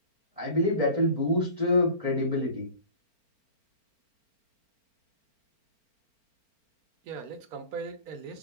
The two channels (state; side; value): late; left; 4.4 ms